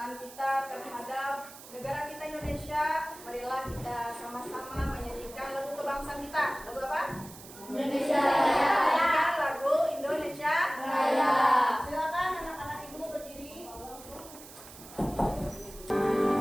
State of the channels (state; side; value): noise; right; hiss, 17 dB below the sound